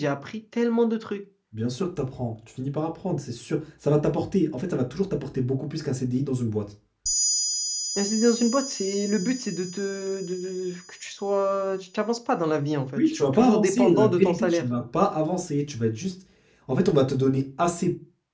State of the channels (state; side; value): identical; both; correlation 1.00